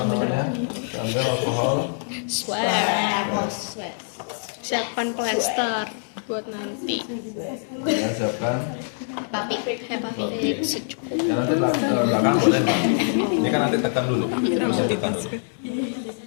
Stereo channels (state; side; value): silent; right; 62 dB below the other